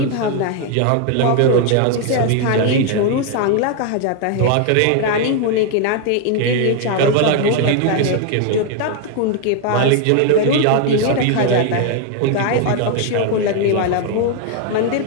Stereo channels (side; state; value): both; different; correlation 0.00